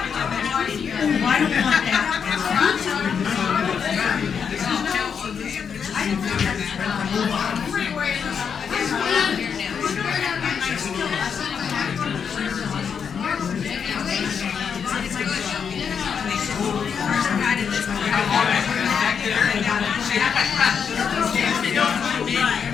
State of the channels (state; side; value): quieter; right; 6.8 dB